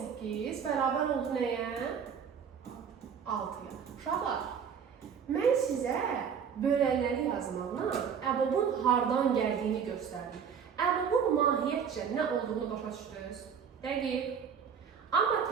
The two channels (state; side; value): quieter; left; 7.2 dB